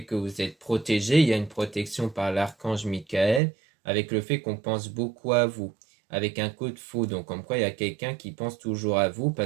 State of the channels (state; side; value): drops out; left; at 3.4 s